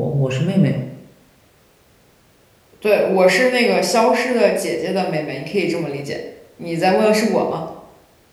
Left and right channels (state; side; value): identical; both; correlation 1.00